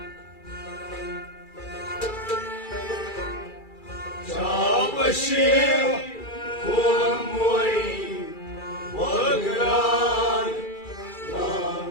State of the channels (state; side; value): late; right; 2.3 ms